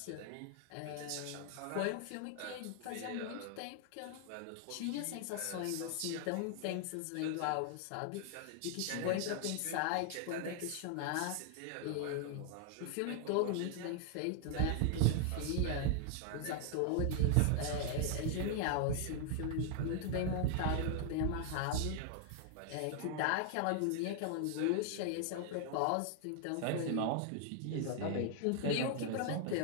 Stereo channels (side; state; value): both; different; correlation 0.00